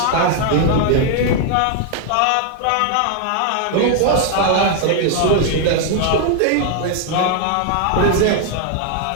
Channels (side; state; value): both; different; correlation 0.00